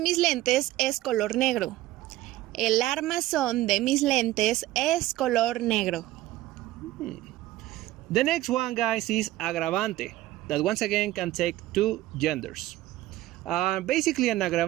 lentes es color negro. El armazón de mis lentes es color negro. the next one, guys, is agravante, that once again can take two genders. Basically, an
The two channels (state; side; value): quieter; left; 16.0 dB